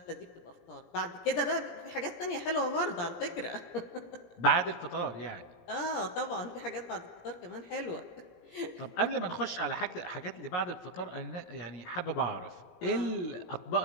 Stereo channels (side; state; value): right; late; 17 ms